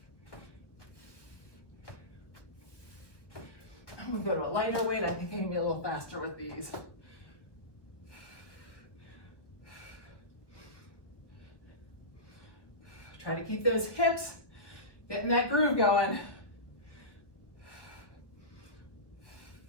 I'm gonna go to a lighter weight. I think I can be a little faster with these. Try to keep those hips, getting that groove going.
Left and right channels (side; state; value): right; late; 1.4 ms